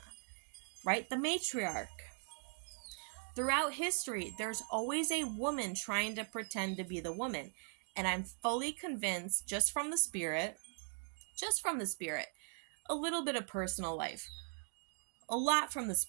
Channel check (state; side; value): silent; left; 51 dB below the other